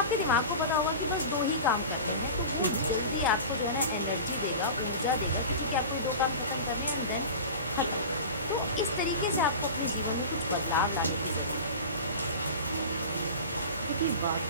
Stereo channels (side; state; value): both; inverted; correlation -0.32